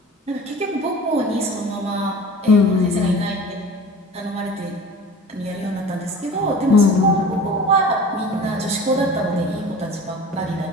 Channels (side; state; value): both; normal; correlation 0.40